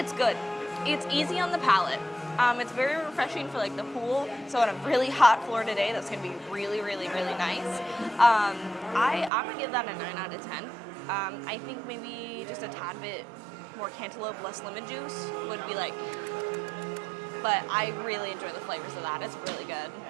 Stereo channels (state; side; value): drops out; left; at 9.3 s